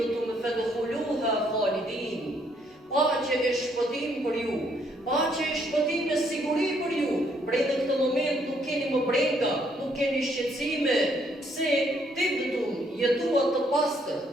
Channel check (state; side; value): normal; both; correlation 0.69